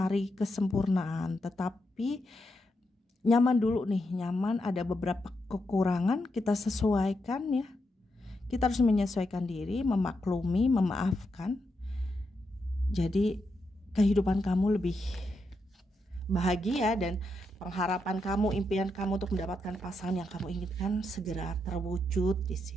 kesempurnaan, tetapi nyaman dulu nih, nyaman, ada beberapa kekurangan kita sesuaikan ya. Kita harus menyesuaikan diri, memaklumi, memaafkan. Jadi kehidupan kamu lebih bahagia dan pengharapan kamu, impian kamu untuk mendapatkan pasangan yang kamu inginkan segera terwujud di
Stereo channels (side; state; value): both; normal; correlation 0.83